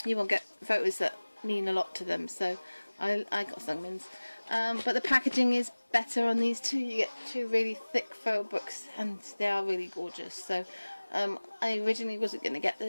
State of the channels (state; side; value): inverted; both; correlation -1.00